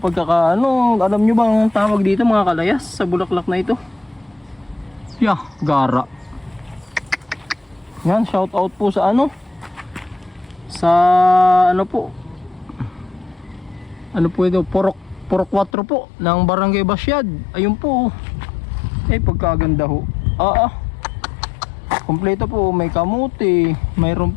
Alam nyo bang tawag dito mga kalayas sa bulaklak na ito? Gara. Yan, shout out po sa ano, sa ano po, ano po ito, Purok 4 po ng Barangay Basyad. Ayun po. Pagkaganda ho. Kompleto po, may kamuti, mayroon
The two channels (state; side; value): drops out; right; at 15.7 s